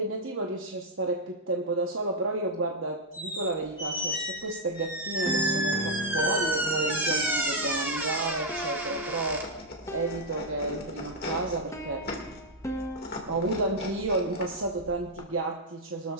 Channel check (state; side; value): normal; both; correlation -0.03